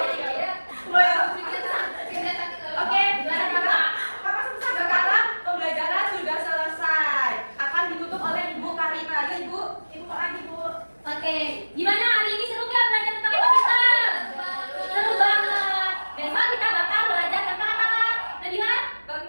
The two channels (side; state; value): both; inverted; correlation -1.00